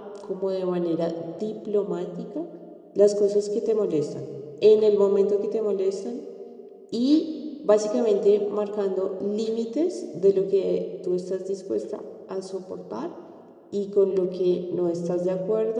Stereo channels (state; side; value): identical; both; correlation 1.00